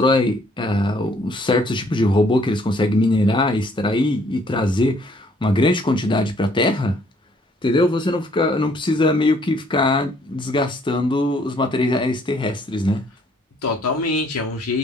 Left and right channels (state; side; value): normal; both; correlation 0.63